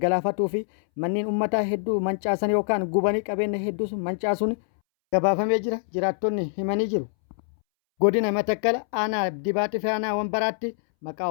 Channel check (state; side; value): silent; right; 62 dB below the other